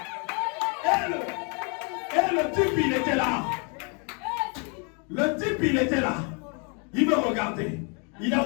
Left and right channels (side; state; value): right; quieter; 36.0 dB